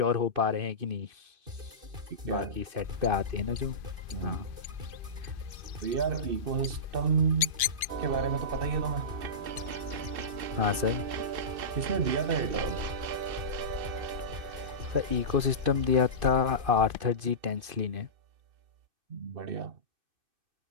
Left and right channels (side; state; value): left; late; 2.5 ms